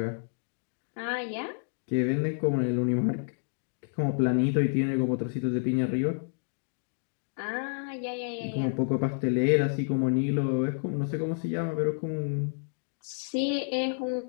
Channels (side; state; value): right; silent; digital silence